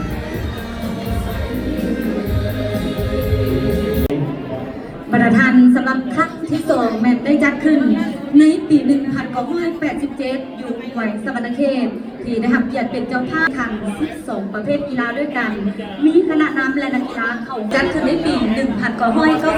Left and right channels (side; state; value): both; identical; correlation 1.00